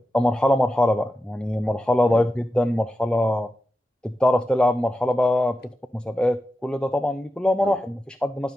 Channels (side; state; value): both; normal; correlation 0.90